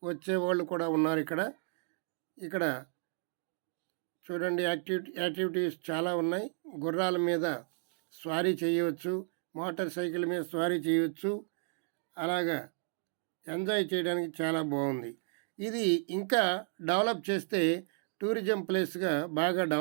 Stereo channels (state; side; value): silent; left; 56 dB below the other